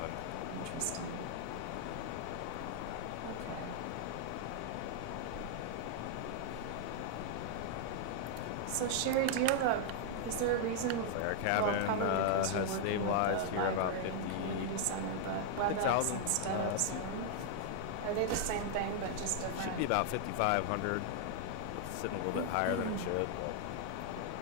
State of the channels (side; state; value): both; different; correlation 0.00